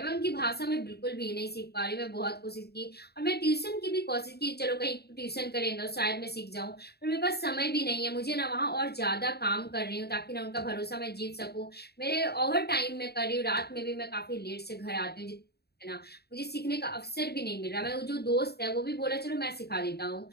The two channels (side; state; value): right; late; 0.47 ms